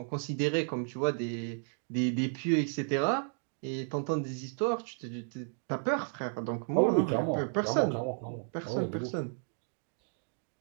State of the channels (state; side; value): silent; left; digital silence